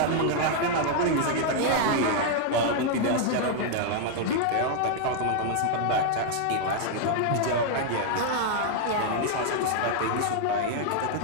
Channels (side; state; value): both; different; correlation 0.00